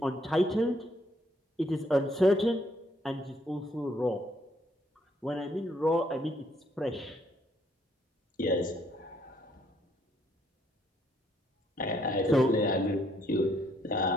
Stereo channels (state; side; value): normal; both; correlation 0.69